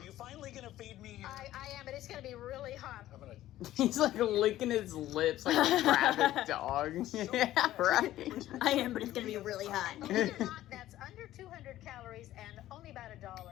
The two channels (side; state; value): right; quieter; 14.1 dB